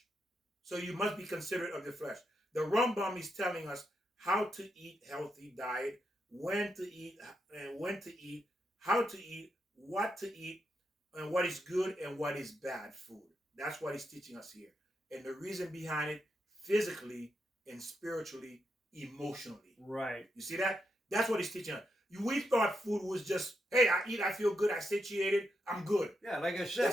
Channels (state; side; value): normal; both; correlation 0.83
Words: So you must be considerate of your flesh. The Rambam is telling us how to eat healthy diet, when to eat, and when to eat, how to eat, what to eat, and what is good and what is bad food. That's what he's teaching us here. And the reason behind it, physically and spiritually, emotionally. right. You see that? That's what he's teaching us. We thought food was just, hey, I eat, I feel good, I satiated, I'm good. Yeah, like I said,